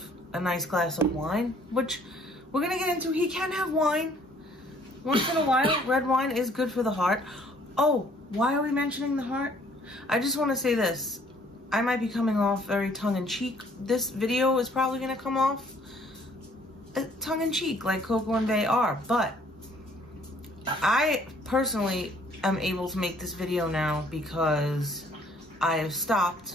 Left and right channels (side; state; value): both; normal; correlation 0.60